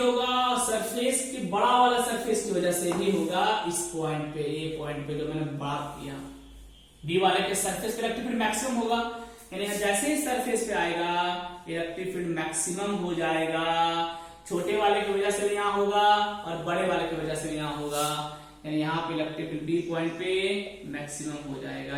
सरफेस की बड़ा वाला सरफेस की वजह से भी होगा। इस पॉइंट पे, ये पॉइंट पे जो मैंने बात किया, बी वाले के सरफेस पे इलेक्ट्रिक फील्ड मैक्सिमम होगा, यानी जैसे ही सरफेस पे आएगा इलेक्ट्रिक फील्ड मैक्सिमम हो जाएगा। छोटे वाले की वजह से भी यहां होगा और बड़े वाले की वजह से भी यहां होगा, यानी यहां पे इलेक्ट्रिक फील्ड बी पॉइंट पे मैक्सिमम हो जाएगा,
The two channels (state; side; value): identical; both; correlation 1.00